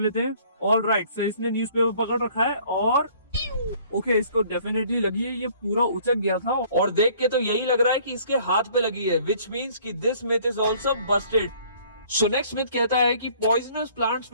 हैं। ऑलराइट, सो इसने न्यूज़पेपर पकड़ रखा है और ओके, इसको डेफिनेटली लगी है ये पूरा उचक गया था। और देख के तो यही लग रहा है कि इसके हाथ पे लगी है, विच मीन्स कि this myth is also Busted. So next myth कहता है कि poisonous plants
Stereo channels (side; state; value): both; inverted; correlation -0.57